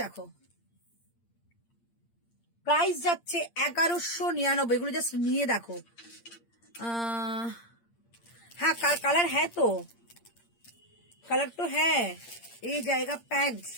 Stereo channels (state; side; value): late; right; 8.7 ms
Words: দেখো, প্রাইস যাচ্ছে 1199। এগুলো জাস্ট নিয়ে দেখো। হ্যাঁ কালার হ্যাঁ, তো কালার তো হ্যাঁ। এই জায়গা প্যান্ট